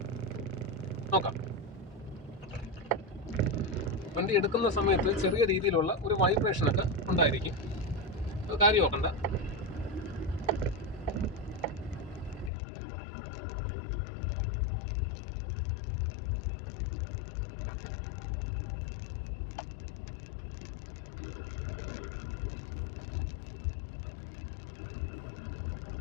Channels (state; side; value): drops out; right; at 12.5 s